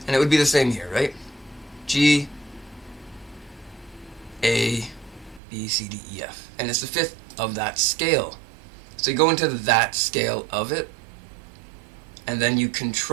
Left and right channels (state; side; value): drops out; left; at 5.4 s